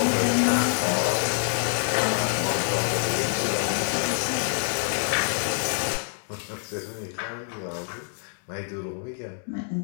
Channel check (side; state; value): right; silent; 61 dB below the other